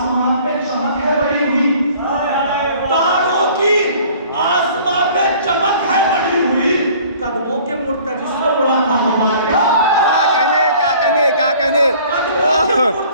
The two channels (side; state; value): both; inverted; correlation -0.51